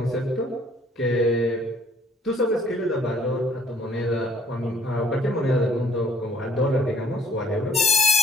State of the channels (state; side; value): normal; both; correlation 0.59